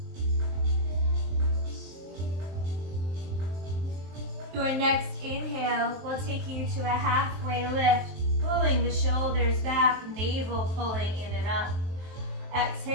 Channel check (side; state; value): left; late; 23 ms